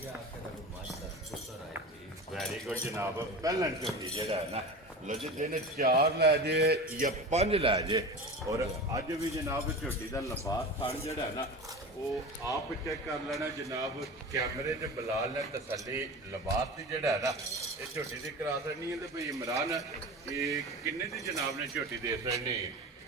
ਗਿਆ ਆਖੇ ਦਾ ਕੋਈ ਮੱਝ ਦਾ ਪੁੱਤਰ ਆਏ ਜੀ ਵੈਰੀ ਗੁੱਡ ਜਨਾਬ। ਪਹਿਲਣ ਝੋਟੀ ਜਿਹੜਾ ਹੈ ਨਾ ਲੋ ਜੀ ਦਿਨ 4 ਲੈ ਜੇ ਜਾਂ 5 ਲੈ ਜੇ। ਔਰ ਅੱਜ ਵੀ ਜਨਾਬ ਝੋਟੀ ਦਾ ਲਿਬਾਸ ਥਣ ਜਿਹੜਾ ਹੈ ਨਾ ਉਹ ਆਪ ਚੈੱਕ ਕਰ ਲੈਣਾ ਜਨਾਬ। ਕੈਮਰੇ 'ਚ ਬਲਾਲ ਨੇ ਤਸੱਲੀ ਲਿਬਾਸ ਦੀ ਜਿਹੜਾ ਹੈ ਨਾ ਇਹ ਝੋਟੀ ਦੀ ਕਰਾ ਦੇਣੀ ਹੈ। ਤੇ ਭਈ ਇਮਰਾਨ ਇਹ ਕਿੰਨੇ ਦੀ ਜਨਾਬ ਨੇ ਝੋਟੀ ਦੇ ਦੇਣੀ?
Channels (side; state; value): both; normal; correlation 0.31